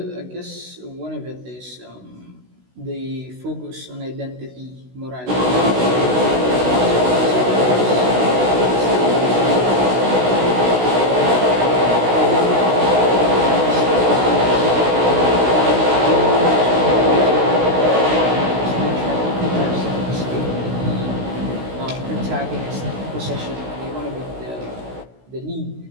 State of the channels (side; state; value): left; late; 16 ms